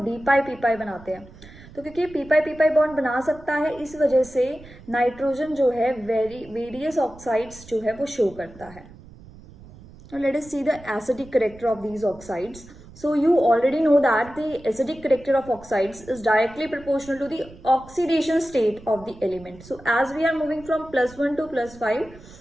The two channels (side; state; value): right; noise; rumble, 20 dB below the sound